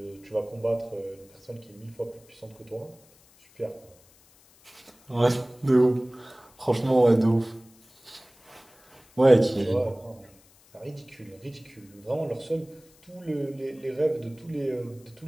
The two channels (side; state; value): left; noise; hiss, 28 dB below the sound